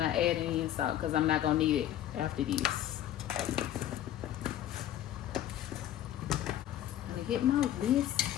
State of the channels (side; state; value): right; quieter; 12.0 dB